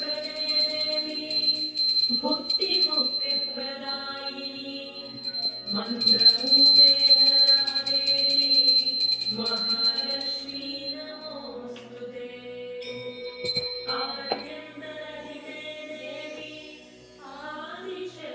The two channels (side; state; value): both; identical; correlation 1.00